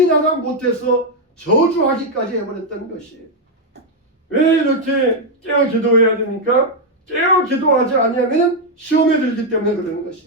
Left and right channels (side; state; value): both; normal; correlation 0.00